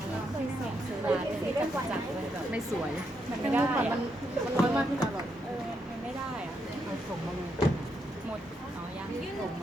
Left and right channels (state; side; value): normal; both; correlation 0.80